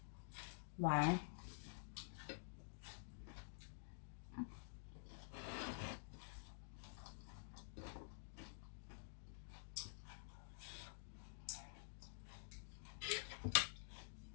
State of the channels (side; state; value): right; silent; digital silence